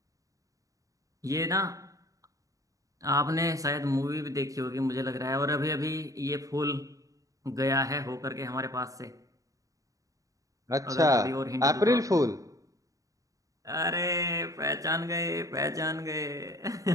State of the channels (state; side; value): late; left; 0.16 ms